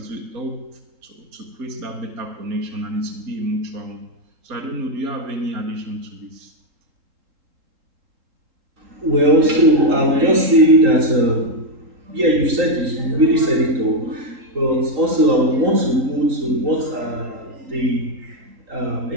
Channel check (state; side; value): late; left; 3.8 ms